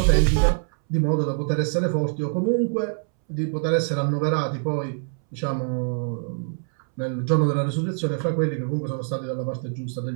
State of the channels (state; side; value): silent; left; 62 dB below the other